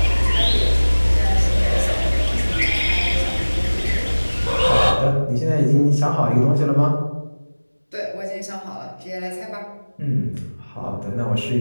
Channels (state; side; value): inverted; both; correlation -1.00